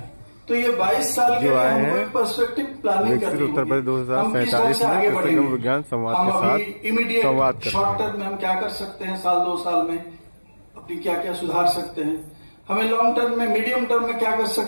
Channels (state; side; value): inverted; both; correlation -1.00